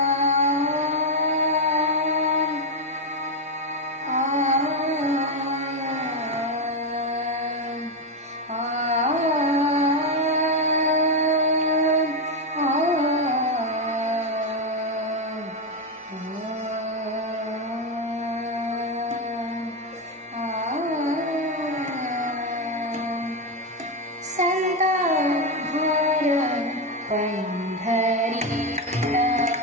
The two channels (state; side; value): normal; both; correlation 0.07